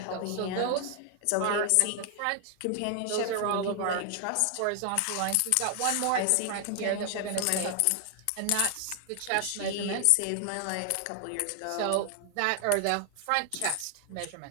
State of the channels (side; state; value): both; different; correlation 0.00